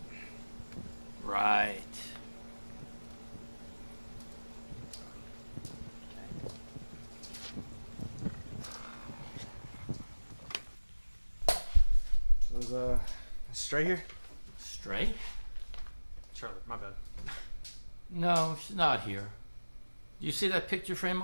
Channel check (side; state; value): both; inverted; correlation -1.00